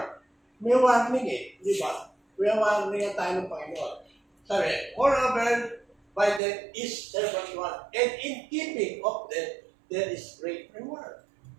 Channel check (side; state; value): left; drops out; at 6.4 s